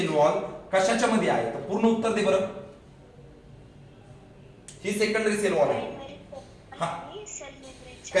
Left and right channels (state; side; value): identical; both; correlation 1.00